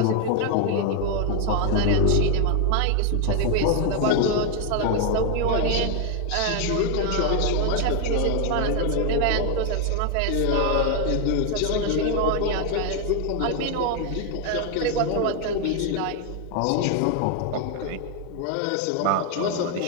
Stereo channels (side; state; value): both; different; correlation 0.01